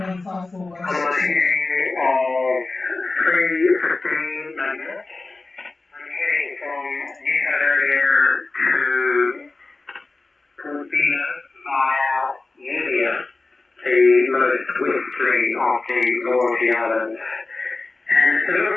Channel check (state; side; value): quieter; right; 3.4 dB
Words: I'm heading of 3:15 minutes. I'm heading from New Caledonia to Portina via India, the most westerly of the Loyalty Islands. And it's a